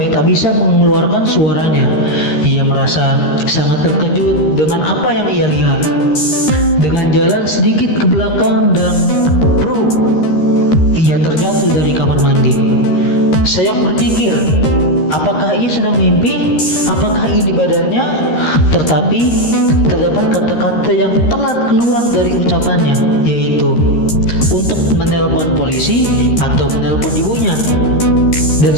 tak bisa mengeluarkan suaranya. Ia merasa sangat terkejut dengan apa yang ia lihat. Dengan jalan sedikit ke belakang dan ia terjatuh dari kamar mandi. Saya berpikir, apakah ia sedang mimpi? Apakah ini badannya? Tetapi terdapat kata-kata yang telat keluar dari ucapannya, yaitu untuk menelpon polisi atau menelpon ibunya. Dan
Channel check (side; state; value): right; late; 13 ms